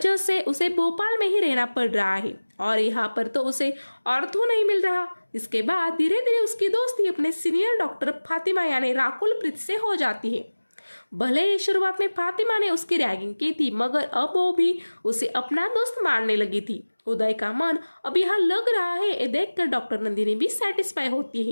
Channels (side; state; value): both; inverted; correlation -1.00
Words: से उसे भोपाल में ही रहना पड़ रहा है और यहाँ पर तो उसे ऑर्थो नहीं मिल रहा। इसके बाद धीरे धीरे उसकी दोस्ती अपने सीनियर डॉक्टर फातिमा यानी राकुल प्रीत से हो जाती है। भले ही शुरुआत में फातिमा ने उसकी रैगिंग की थी, मगर अब वो भी उसे अपना दोस्त मानने लगी थी। उदय का मन अब यहाँ लग रहा है, ये देखकर डॉक्टर नंदिनी भी सेटिस्फाई होती